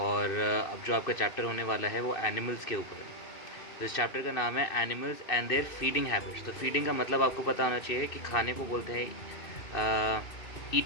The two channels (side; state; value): right; late; 2.6 ms